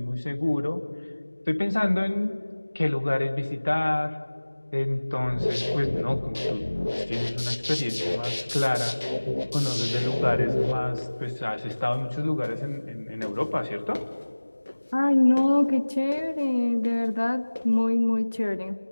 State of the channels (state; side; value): inverted; both; correlation -1.00